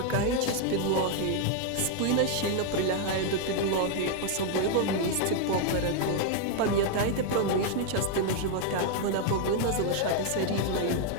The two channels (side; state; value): both; different; correlation 0.00